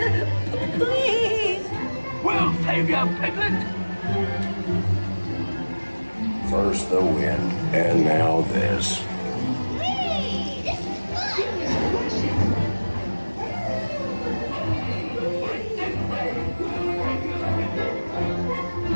We'll save you, Piglet! First the wind, and now this.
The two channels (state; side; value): inverted; both; correlation -1.00